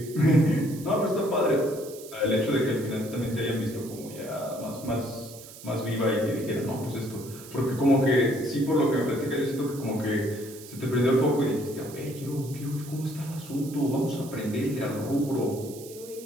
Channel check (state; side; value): noise; right; hiss, 17 dB below the sound